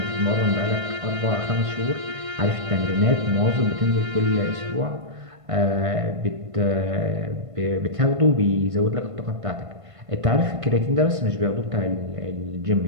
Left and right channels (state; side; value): late; left; 1.5 ms